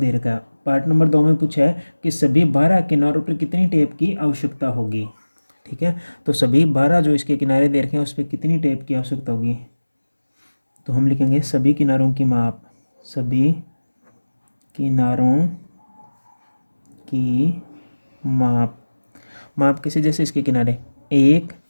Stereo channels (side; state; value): both; inverted; correlation -1.00